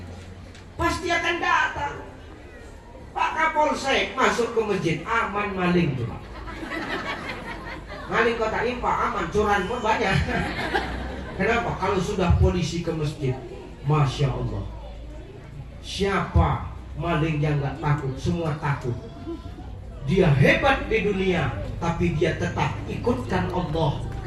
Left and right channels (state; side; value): identical; both; correlation 1.00